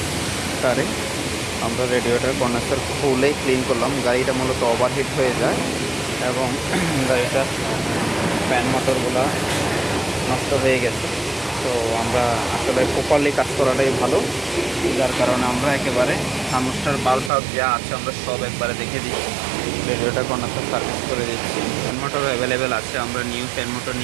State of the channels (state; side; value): drops out; left; at 17.3 s